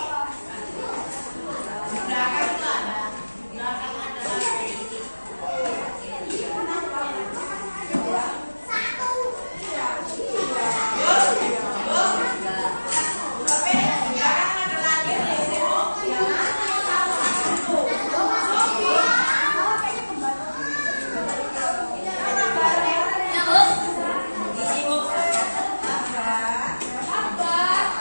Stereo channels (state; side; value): inverted; both; correlation -1.00